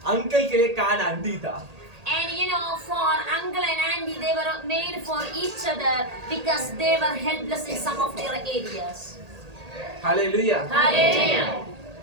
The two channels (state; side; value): late; left; 1.8 ms